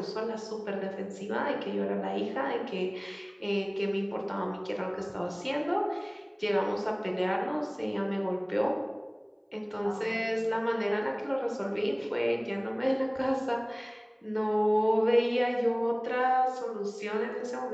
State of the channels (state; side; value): identical; both; correlation 1.00